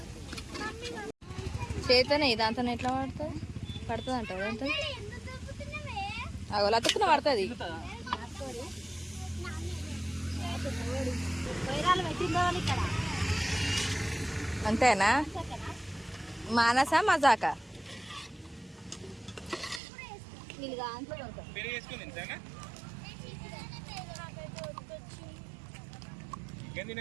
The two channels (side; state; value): left; drops out; at 19.8 s